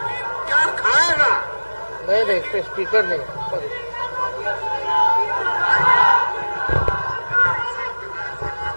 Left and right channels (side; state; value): both; inverted; correlation -1.00